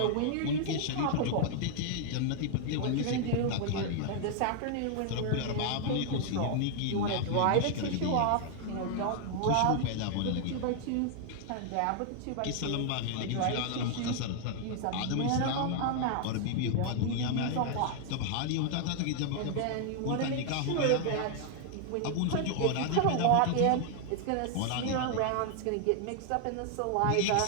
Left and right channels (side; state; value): both; different; correlation 0.00